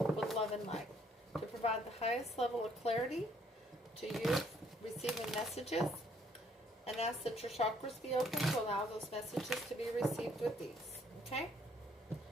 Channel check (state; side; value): normal; both; correlation 0.65